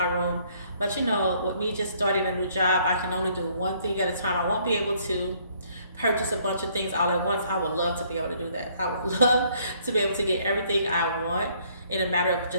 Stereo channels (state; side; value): inverted; both; correlation -0.64